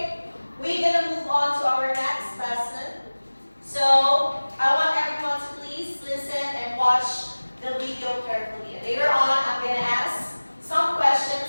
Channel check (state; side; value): inverted; both; correlation -1.00